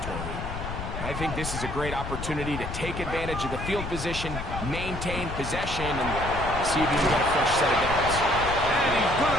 I think this is a great opportunity to take advantage of the field position, maintain possession, and see if you can get a fresh set of downs. And he's going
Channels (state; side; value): noise; left; rumble, 7 dB below the sound